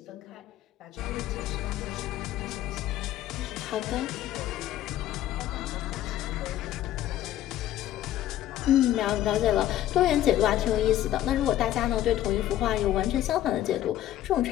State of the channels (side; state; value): right; quieter; 12.9 dB